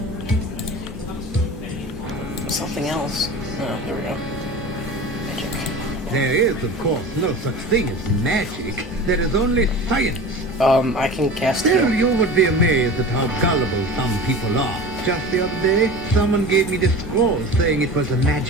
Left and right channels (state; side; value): normal; both; correlation 0.34